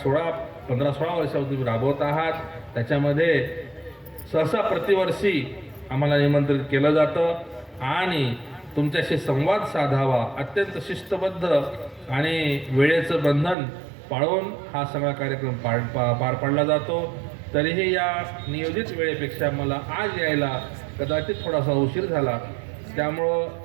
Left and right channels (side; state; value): left; drops out; at 13.6 s